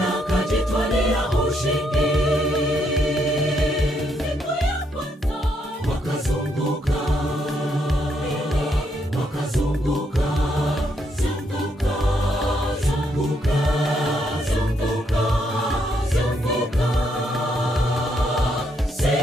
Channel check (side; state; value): both; normal; correlation 0.75